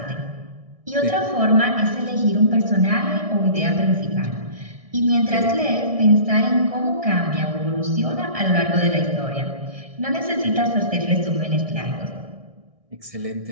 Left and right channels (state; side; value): late; left; 1.6 ms